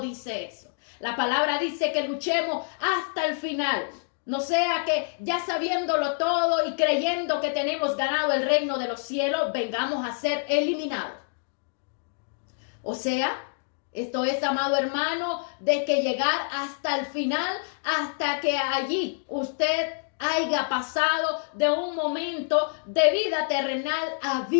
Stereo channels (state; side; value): silent; right; digital silence